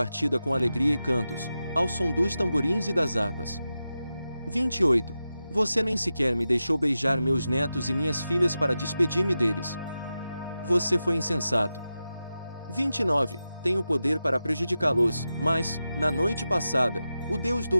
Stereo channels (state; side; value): inverted; both; correlation -0.92